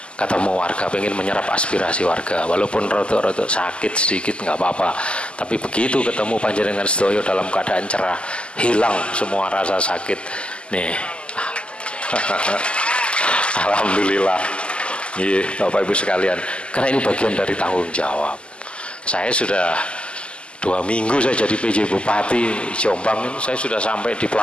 ketemu warga, pengen menyerap aspirasi warga, walaupun rotok-rotok sakit sedikit nggak apa-apa. Tapi begitu ketemu panjenengan sedoyo dalam keadaan cerah, hilang semua rasa sakit nih. Alhamdulillah. Iya, Bapak Ibu sekalian, karena ini bagian dari tanggung jawab. Saya sudah 2 minggu saya jadi PJ Bupati Jombang ini, saya sudah sampai di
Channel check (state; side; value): late; right; 0.053 ms